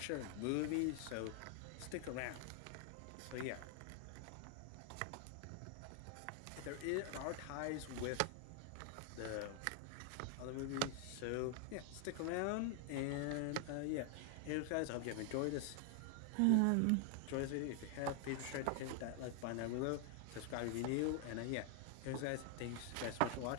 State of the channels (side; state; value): both; different; correlation 0.00